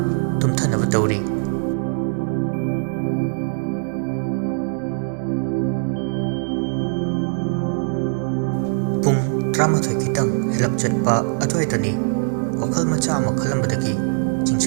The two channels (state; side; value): silent; left; 65 dB below the other